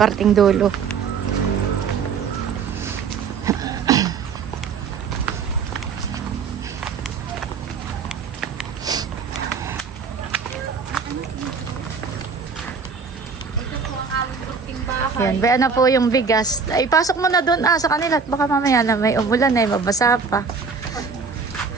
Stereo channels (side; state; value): left; quieter; 5.4 dB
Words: dulo. Yan, baya na po yung bigas. Ay, pasok mo na doon sa kanila at baka mamaya na may umulan ay mabasa pa.